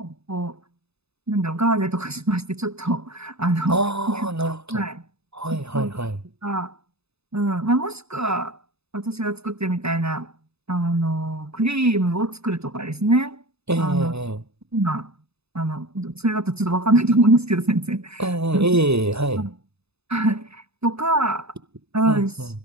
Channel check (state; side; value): late; left; 0.79 ms